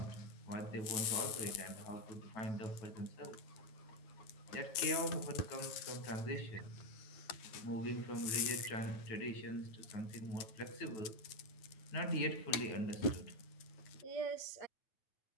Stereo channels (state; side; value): late; right; 9.5 ms